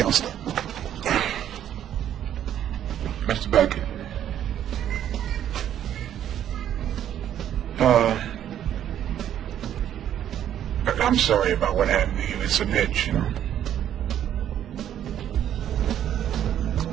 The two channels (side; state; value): left; quieter; 10.6 dB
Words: Mr. Beckett. I'm sorry about what happened to you. It's an itch, you know.